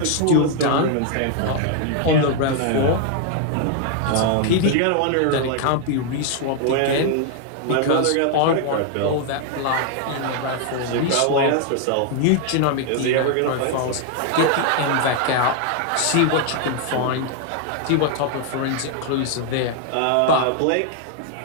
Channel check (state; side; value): different; both; correlation 0.00